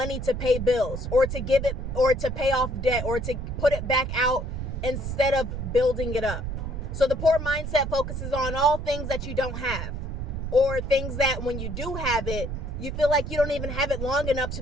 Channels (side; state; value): right; noise; rumble, 5 dB below the sound